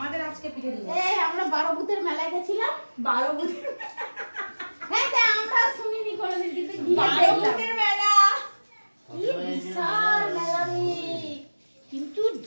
আজকে পিঠে দিবস। এই আমরা 12 ভূতের মেলায় গেছিলাম। 12 ভূতের হ্যাঁ তা আমরা শুনিনি কোনোদিন, কিন্তু 12 ভূতের মেলা কি বিশাল মেলা রে। কিন্তু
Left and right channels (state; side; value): inverted; both; correlation -1.00